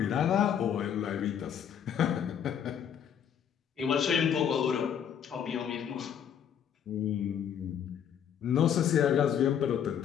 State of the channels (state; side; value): quieter; right; 8.6 dB